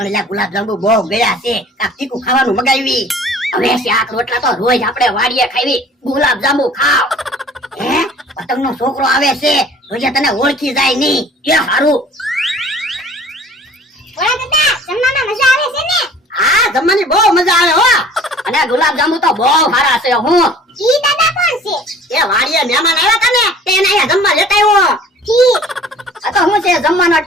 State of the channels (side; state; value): both; normal; correlation 0.49